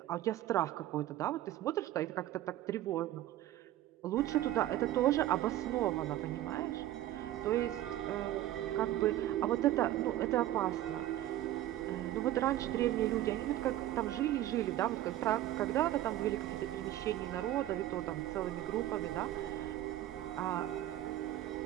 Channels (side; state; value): left; quieter; 13.7 dB